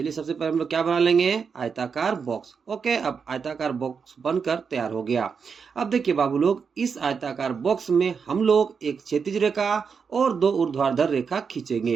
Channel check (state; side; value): quieter; left; 5.9 dB